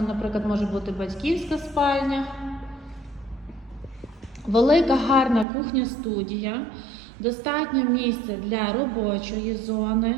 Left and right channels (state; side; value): drops out; left; at 5.5 s